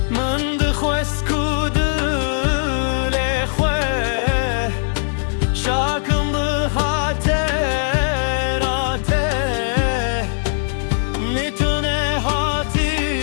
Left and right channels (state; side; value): silent; right; digital silence